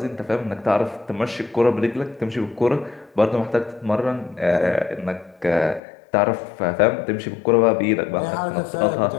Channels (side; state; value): right; drops out; at 5.8 s